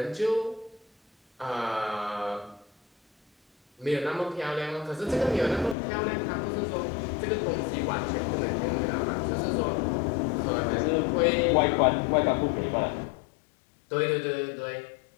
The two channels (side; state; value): right; drops out; at 5.8 s